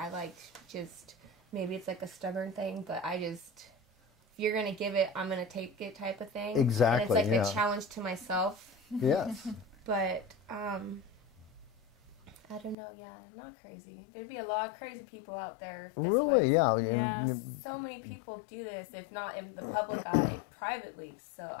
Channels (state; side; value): drops out; right; at 12.8 s